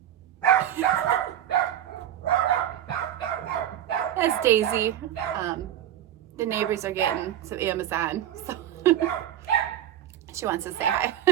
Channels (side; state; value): left; quieter; 11.3 dB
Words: That's Daisy. The neighbors are getting some Amazon, so she wants to say hi.